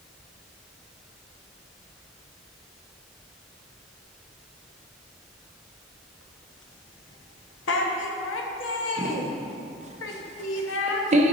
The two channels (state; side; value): normal; both; correlation 0.31